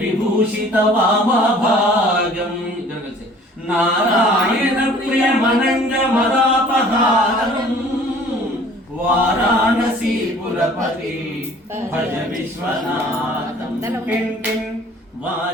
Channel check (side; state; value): both; normal; correlation 0.51